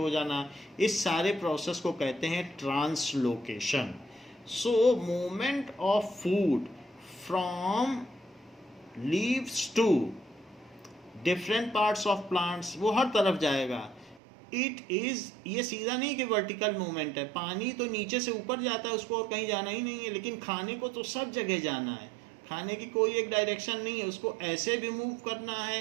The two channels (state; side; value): drops out; left; at 14.2 s